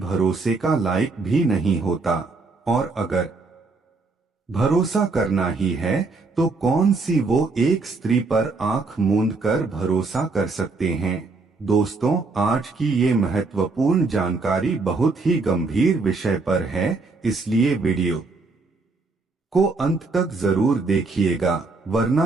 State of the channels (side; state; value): left; quieter; 3.8 dB